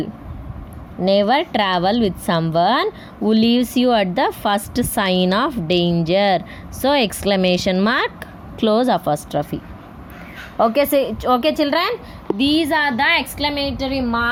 Never travel with someone who leaves you at the first sign of danger. So exclamation mark, close apostrophe. Okay, so, okay children, these are the exclamatory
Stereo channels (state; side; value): identical; both; correlation 1.00